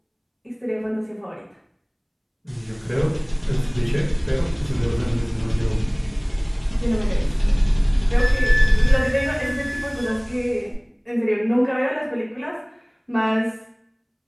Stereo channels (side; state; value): both; identical; correlation 1.00